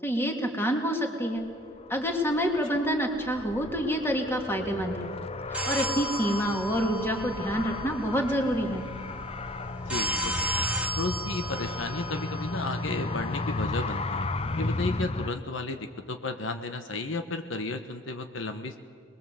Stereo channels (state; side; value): normal; both; correlation 0.50